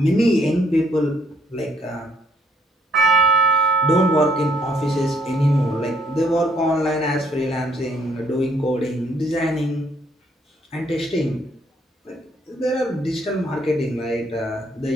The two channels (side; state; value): both; normal; correlation 0.68